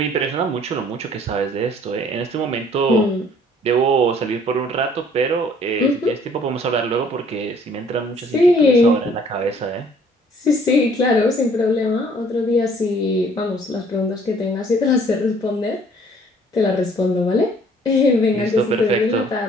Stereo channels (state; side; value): normal; both; correlation 0.58